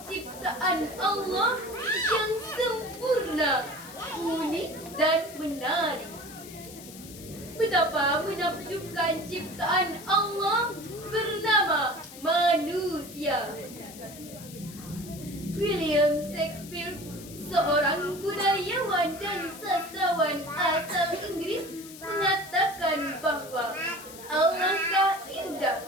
ciptaan Allah yang sempurna, unik dan menarik. Betapa menakjubkan ciptaan Allah bernama manusia. William Shakespeare, seorang budayawan dan sastrawan asal Inggris, mengatakan bahwa alangkah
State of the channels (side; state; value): left; noise; hiss, 16 dB below the sound